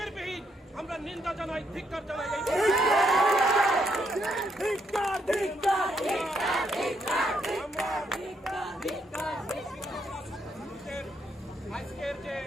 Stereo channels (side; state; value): both; normal; correlation 0.75